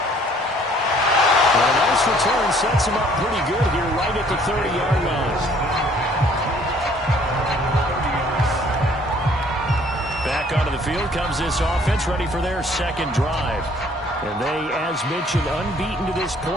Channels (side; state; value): both; normal; correlation 0.59